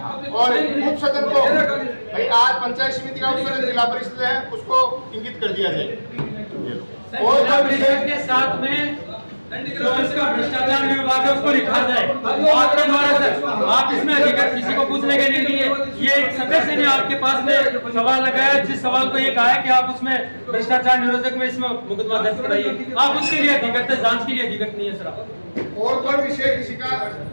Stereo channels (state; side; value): inverted; both; correlation -1.00